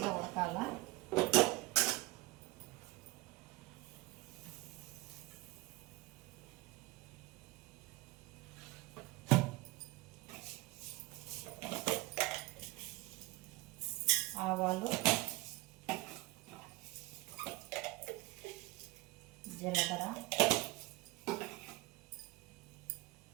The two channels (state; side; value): quieter; left; 20.6 dB